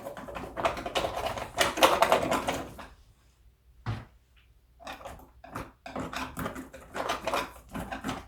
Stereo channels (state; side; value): identical; both; correlation 1.00